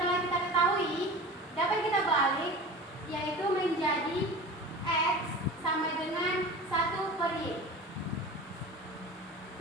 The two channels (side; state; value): both; normal; correlation 0.35